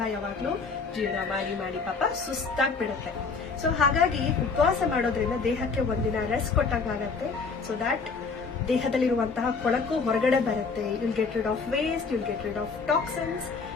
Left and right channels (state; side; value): quieter; right; 4.7 dB